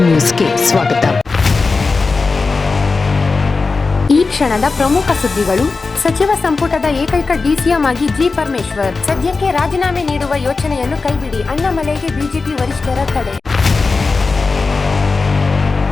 ನ್ಯೂಸ್ಗೆ ಸ್ವಾಗತ. ಈ ಕ್ಷಣದ ಪ್ರಮುಖ ಸುದ್ದಿಗಳು. ಸಚಿವ ಸಂಪುಟದ ಏಕೈಕ ಡಿಸಿಎಂ ಆಗಿ ಜಿ ಪರಮೇಶ್ವರ್. ಸದ್ಯಕ್ಕೆ ರಾಜೀನಾಮೆ ನೀಡುವ ಯೋಚನೆಯನ್ನು ಕೈಬಿಡಿ, ಅಣ್ಣಾಮಲೈಗೆ ಬಿಜೆಪಿ ವರಿಷ್ಠರ ತಡೆ.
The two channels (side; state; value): right; quieter; 4.1 dB